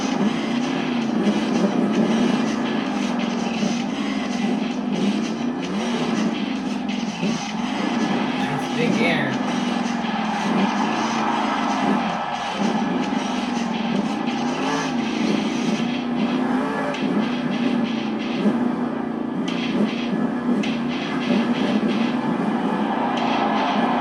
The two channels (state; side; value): identical; both; correlation 1.00